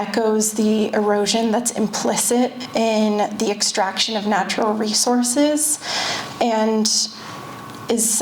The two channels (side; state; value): both; identical; correlation 1.00